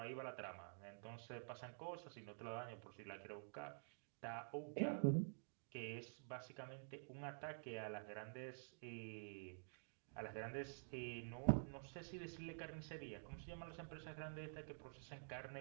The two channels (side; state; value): left; silent; digital silence